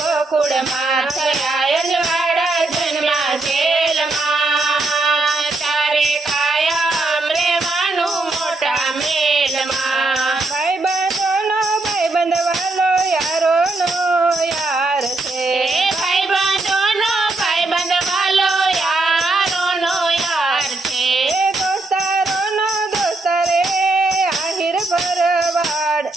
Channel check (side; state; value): left; quieter; 3.1 dB